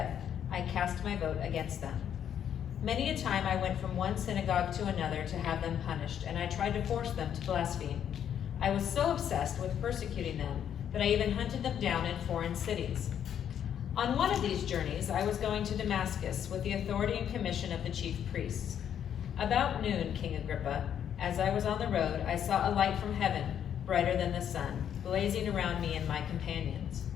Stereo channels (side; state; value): right; quieter; 9.3 dB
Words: I cast my vote against them. Many a time I went from one synagogue to another to have them punished, and I tried to force them to blaspheme. I was so obsessed with persecuting them that I even hunted them down in foreign cities. On one of these journeys, I was going to Damascus with the authority and commission of the chief priests. About noon, King Agrippa, as I was on the road, I saw a light from heaven, brighter than the sun, blazing around me and my companions.